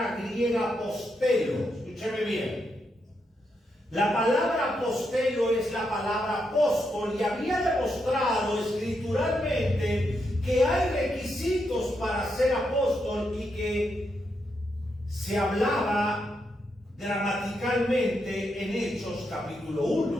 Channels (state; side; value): normal; both; correlation 0.82